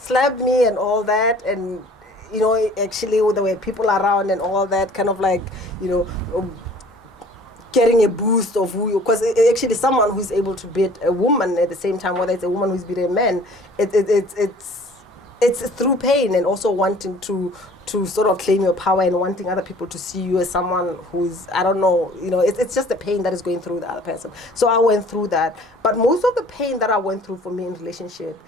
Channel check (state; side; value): normal; both; correlation 0.51